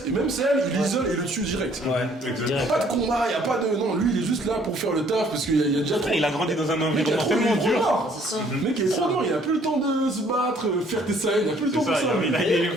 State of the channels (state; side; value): normal; both; correlation 0.61